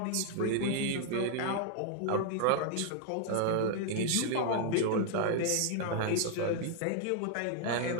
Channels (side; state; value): both; different; correlation 0.00